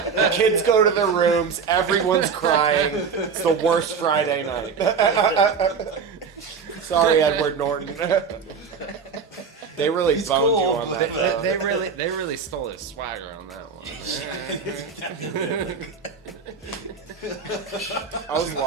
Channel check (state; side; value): quieter; left; 5.8 dB